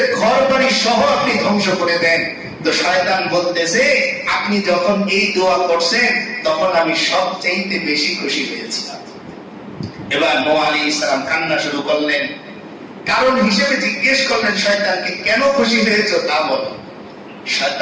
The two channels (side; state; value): both; identical; correlation 1.00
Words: ঘর বাড়ি সহ আপনি ধ্বংস করে দেন। তো শয়তান বলতেছে আপনি যখন এই দোয়া করছেন তখন আমি সবচেয়ে বেশি খুশি হয়েছি। এবার নূহ আলাইহিস সালাম কান্না শুরু করলেন, কারণ হিসেবে জিজ্ঞেস করলেন শয়তানকে কেন খুশি হয়েছো তা বলো।